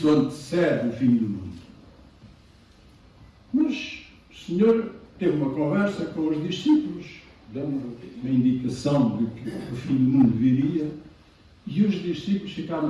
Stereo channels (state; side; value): identical; both; correlation 1.00